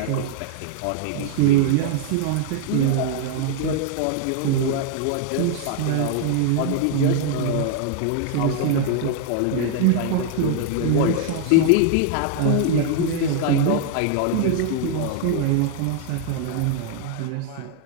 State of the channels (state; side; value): different; both; correlation 0.00